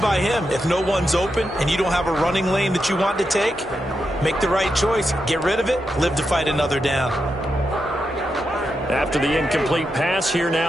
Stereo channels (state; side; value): normal; both; correlation 0.86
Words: him. If no one's open and you don't have a running lane that you want to take, make the right choice. Get rid of it. Live to fight another down. After the incomplete pass, here